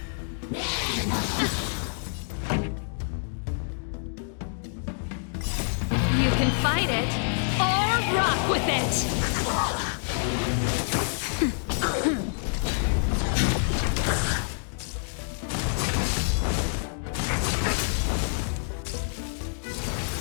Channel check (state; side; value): silent; right; digital silence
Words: You can fight it, or rock with it!